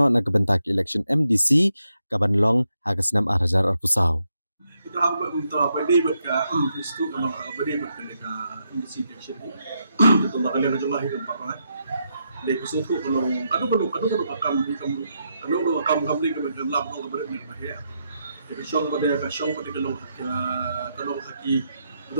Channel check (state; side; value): inverted; both; correlation -0.81